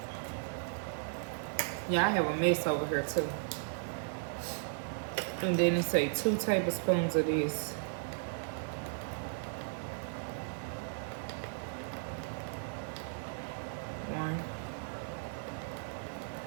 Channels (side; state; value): left; silent; 54 dB below the other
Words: Yeah, I have a mess over here too. And then it say 2 tablespoons of this. One.